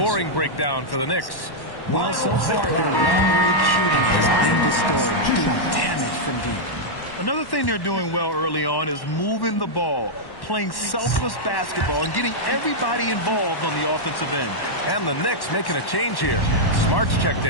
breakdown for the Knicks. Well, so far, their long-range shooting has been the story, doing damage from deep. Another thing they're doing well early on is moving the ball, playing selfless basketball, and getting everybody involved on the offensive end. And the Knicks making a change here. Smart's checked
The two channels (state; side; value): late; right; 1.1 ms